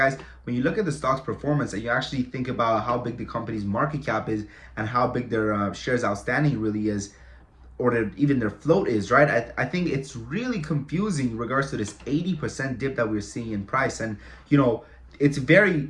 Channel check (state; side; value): identical; both; correlation 1.00